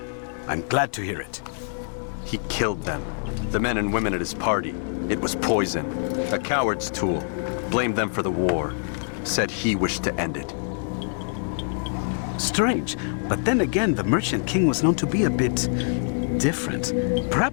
I'm glad to hear it. He killed them. The men and women at his party. It was poison. A coward's tool. Blamed them for the war. Said he wished to end it. Strange, but then again, the Merchant King was known to be a bit different.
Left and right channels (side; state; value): right; silent; 62 dB below the other